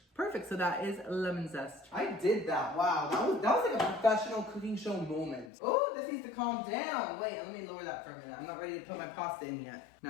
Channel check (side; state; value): right; drops out; at 5.5 s